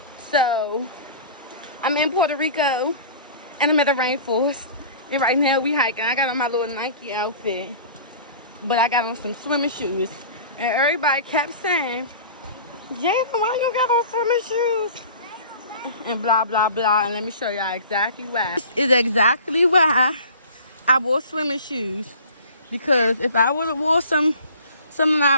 So, I'm in Puerto Rico, and I'm at the rainforest. And right now we hiking. I got on my little Nike outfit, but I got on some swimming shoes. And everybody kept saying, Jada, why you got on swimming shoes? And blah, blah, blah. And let me show y'all exactly why. This is exactly why I wore swimming shoes. Because if I would have wore some of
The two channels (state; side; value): inverted; both; correlation -0.42